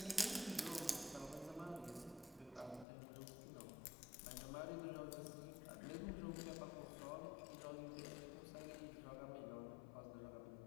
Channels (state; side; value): drops out; right; at 2.9 s